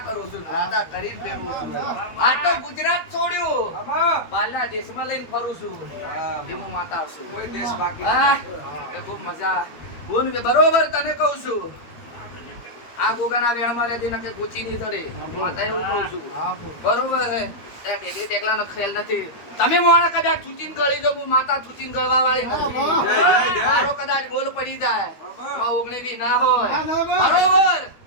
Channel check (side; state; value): right; late; 12 ms